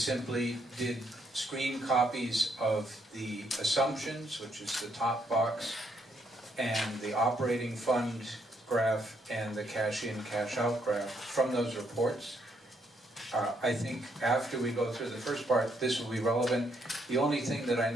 did screen copies of the assumptions, which is the top box, and the operating fund graph and the cash in, cash out graph from those reports. I think after we go through the first part, this will be relevant. The only thing that I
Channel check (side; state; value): both; normal; correlation 0.73